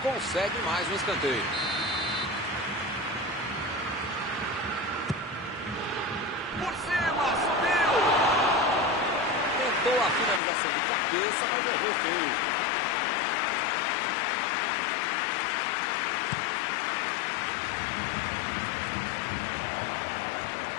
consegue mais um escanteio. Por cima, subiu. Tentou a finalização de cabeça, mas errou feio.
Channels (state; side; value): drops out; right; at 10.4 s